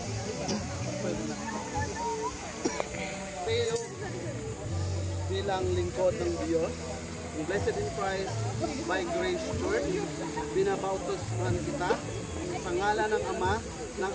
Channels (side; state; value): both; identical; correlation 1.00